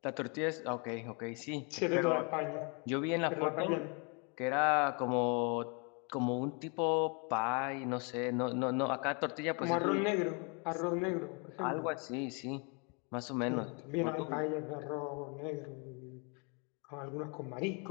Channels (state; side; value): quieter; right; 34.5 dB